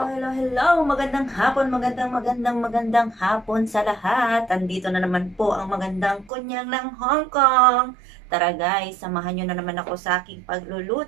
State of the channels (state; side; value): drops out; left; at 6.3 s